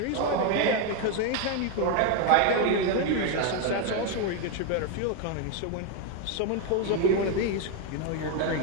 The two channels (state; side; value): different; both; correlation 0.01